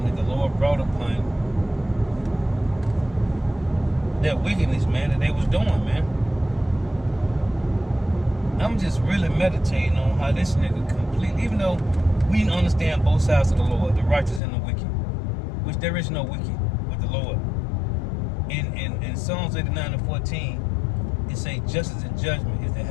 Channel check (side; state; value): right; drops out; at 14.4 s